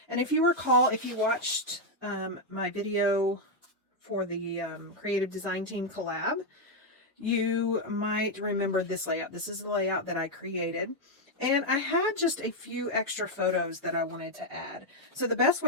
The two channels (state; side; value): normal; both; correlation 0.01